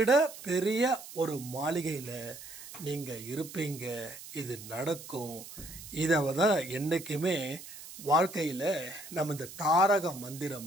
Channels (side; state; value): right; noise; hiss, 14 dB below the sound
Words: பெரிய ஒரு மாளிகையில் நீங்கள் இருப்பீங்க. இது நடக்கும். இதை தான் என்றைக்குமே வாழ்க்கையில் நம்ம இந்த தாரக